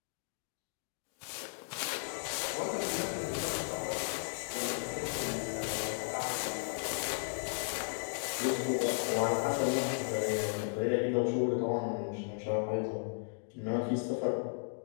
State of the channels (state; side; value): silent; right; digital silence